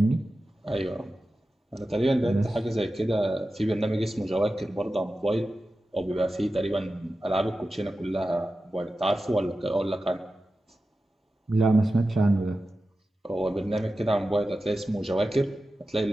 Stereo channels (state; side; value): normal; both; correlation 0.93